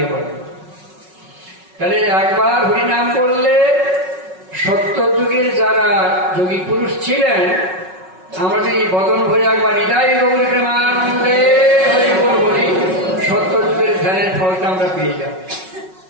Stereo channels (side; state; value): left; late; 5.4 ms